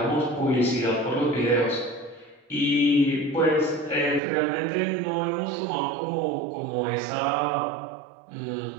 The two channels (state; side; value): drops out; left; at 4.2 s